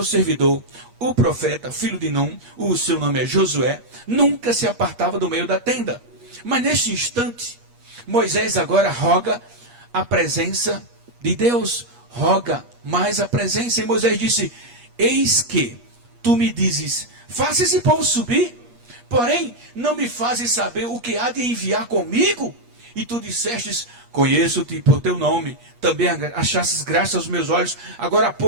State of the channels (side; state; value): left; late; 8.4 ms